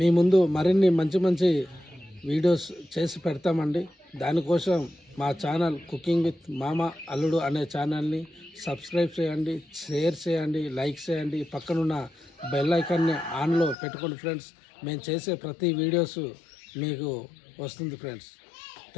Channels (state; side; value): drops out; right; at 13.8 s